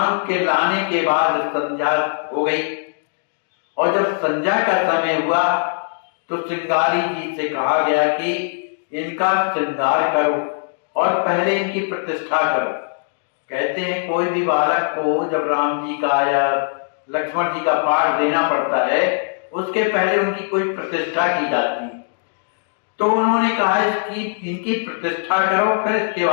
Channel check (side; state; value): right; silent; digital silence